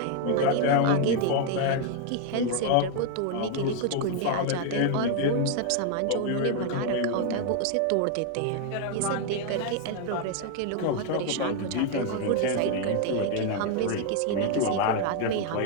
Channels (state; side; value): different; both; correlation 0.00